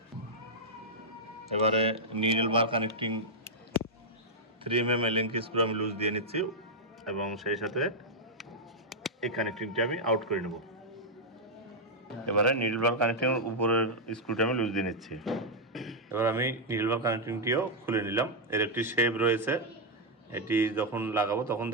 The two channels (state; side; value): normal; both; correlation -0.04